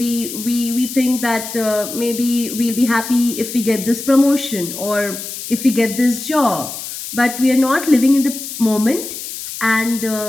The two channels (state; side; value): noise; left; hiss, 9 dB below the sound